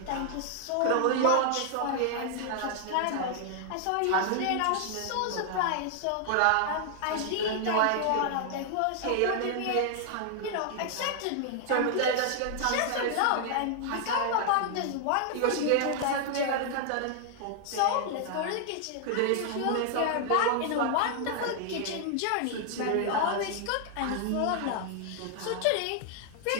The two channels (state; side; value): different; both; correlation 0.00